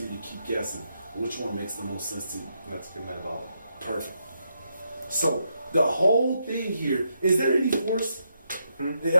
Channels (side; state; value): both; inverted; correlation -0.80